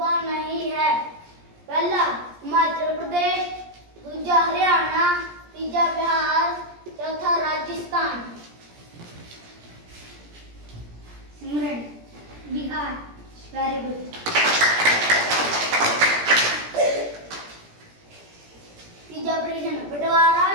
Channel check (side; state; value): left; late; 17 ms